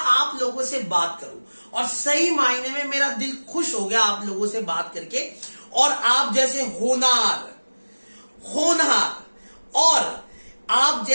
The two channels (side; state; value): both; inverted; correlation -1.00